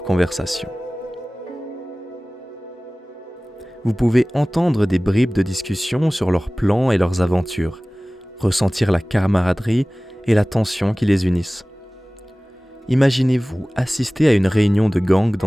conversation. Vous pouvez entendre des bribes de discussion sur leurs plans et leurs aventures, ressentir la camaraderie et la tension qui les unissent. Imaginez-vous assister à une réunion de gang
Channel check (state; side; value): normal; both; correlation 0.98